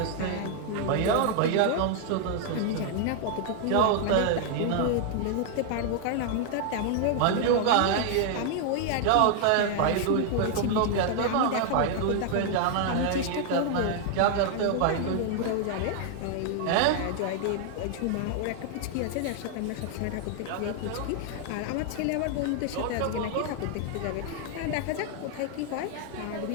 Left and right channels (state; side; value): different; both; correlation 0.00